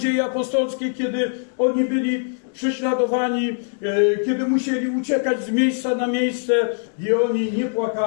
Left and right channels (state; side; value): silent; right; 61 dB below the other